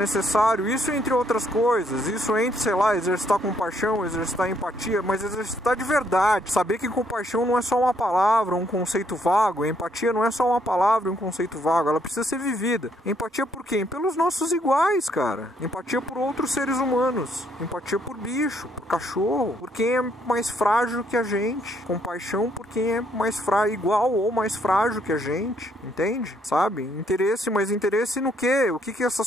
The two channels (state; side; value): normal; both; correlation 0.70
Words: isso entre outras coisas. Isso entre, sei lá, exercitar compaixão, exercitar empatia, mas exercitar de verdade. Saber que compaixão não é só uma palavra, um conceito vago. Empatia não é só uma palavra, um conceito vago. Ela precisa ser vivida. Empatia por quem? Pelos nossos iguais, cara. Empatia por outros seres humanos. Empatia por bicho, por cachorro, por quem é mais frágil que a gente. Compaixão por quem é mais frágil, igual ou mais frágil que a gente. Entende? Sabe? Interesse, mas interesse no quê? O que